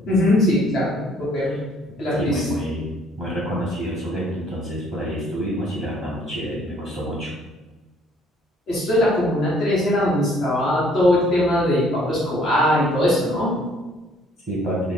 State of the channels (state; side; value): normal; both; correlation 0.61